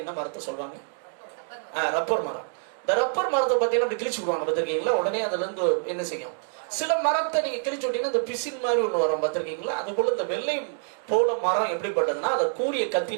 என்ன மரத்தை சொல்லுவாங்க? ரப்பர் மரம். இந்த ரப்பர் மரத்தை பார்த்தீங்கன்னா கிழிச்சு விடுவாங்க, பார்த்திருக்கீங்களா? உடனே அதுல இருந்து என்ன செய்யும்? சில மரத்தை நீங்க கிழிச்சு விட்டீங்கன்னா இந்த பிசின் மாதிரி ஒண்ணு வரும், பார்த்திருக்கீங்களா? அது போல இந்த வெள்ளை போல மரம் எப்படிப்பட்டதுன்னா, அதை கூரிய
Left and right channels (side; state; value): left; silent; 56 dB below the other